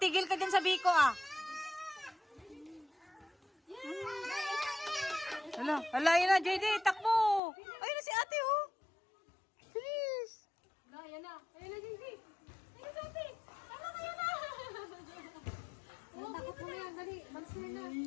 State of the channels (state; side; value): drops out; right; at 7.4 s